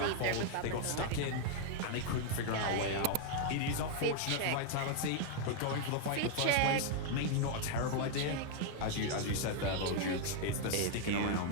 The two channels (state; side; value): different; both; correlation 0.00